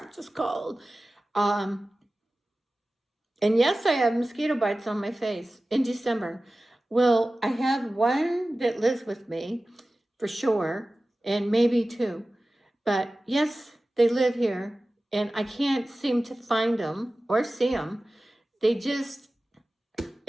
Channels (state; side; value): normal; both; correlation 0.96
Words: just cold. And yes, I have mosquito bites on my face in December. Well, I have one that lives with me for sure, and maybe two. But yes, they live here, and I can't seem to find them or see them. They just,